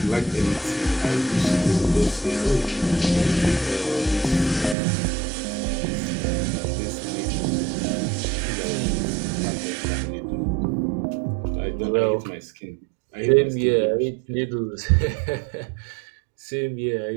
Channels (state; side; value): drops out; left; at 4.8 s